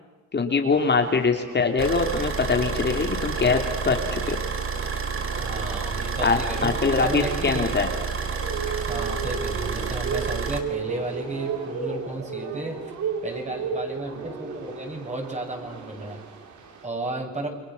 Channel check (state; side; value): normal; both; correlation 0.18